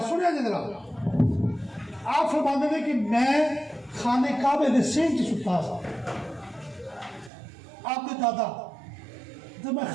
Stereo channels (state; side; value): drops out; left; at 7.3 s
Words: سنیا جی ذرا۔ آپ فرماتے ہیں کہ میں خانے کعبے دے سینٹ ستا سا، آپ کے دادا، تو میں